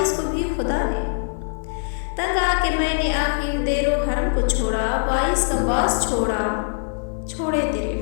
को भी खुदा ने। तंग आके मैंने आखिर देरो हरम को छोड़ा, बाइस का बास छोड़ा छोड़े तेरे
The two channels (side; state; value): right; silent; 58 dB below the other